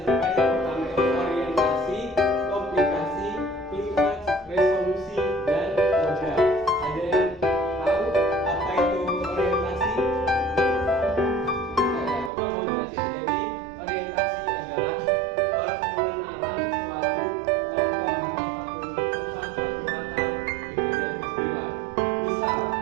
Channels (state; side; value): drops out; left; at 12.3 s